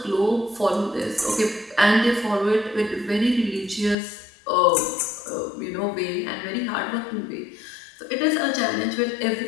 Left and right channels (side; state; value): right; drops out; at 4.0 s